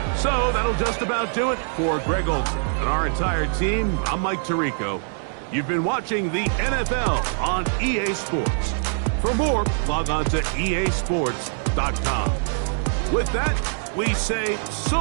So that'll just about do it for Greg Olson and our entire team. I'm Mike Tirico. You've been watching the NFL on EA Sports. For more, log on to easports.com. With that, we say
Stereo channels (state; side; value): silent; left; digital silence